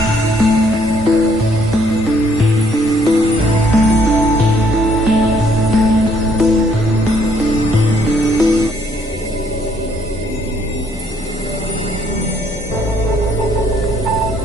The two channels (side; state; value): both; normal; correlation 0.66